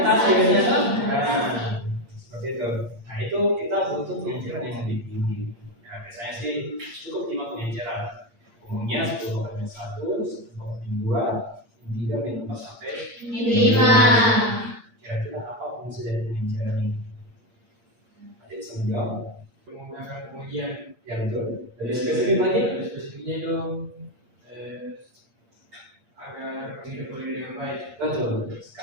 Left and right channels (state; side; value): late; left; 8.6 ms